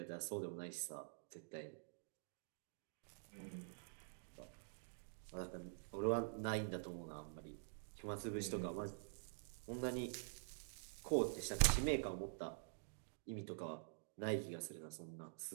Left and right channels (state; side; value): silent; left; digital silence